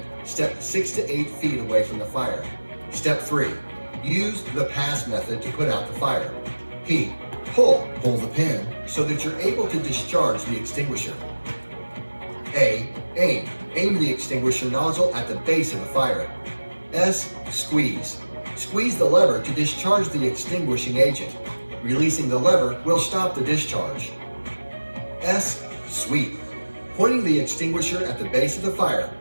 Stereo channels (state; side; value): inverted; both; correlation -1.00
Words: step 6 to 8 feet away from the fire. Step 3. Use the pass method to put out the fire. P. Pull the pin so that you're able to discharge the extinguisher. A. Aim the extinguisher nozzle at the base of the fire. S. Squeeze the lever to discharge the extinguishing agent. Releasing the lever will stop the discharge. S. Sweep. Pointing the extinguisher at the base of the fire,